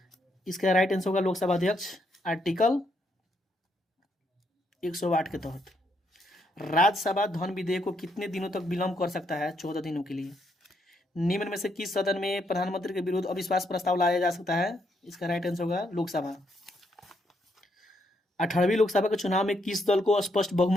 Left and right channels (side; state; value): both; normal; correlation 0.76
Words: इसका राइट आंसर होगा लोकसभा अध्यक्ष, आर्टिकल 108 के तहत। राज्यसभा धन विधेयक को कितने दिनों तक विलंब कर सकता है? 14 दिनों के लिए। निम्न में से किस सदन में प्रधानमंत्री के विरुद्ध अविश्वास प्रस्ताव लाया जा सकता है? इसका राइट आंसर होगा लोकसभा। 18वीं लोकसभा के चुनाव में किस दल को स्पष्ट